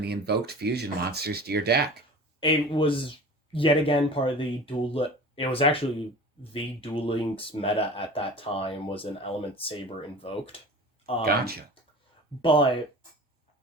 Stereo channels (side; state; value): both; normal; correlation 0.39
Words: the Invoked Fusion monsters to your deck? It was, yet again, part of the it was actually the Duel Links meta at that time was an Element Saber Invoked. Gotcha. But...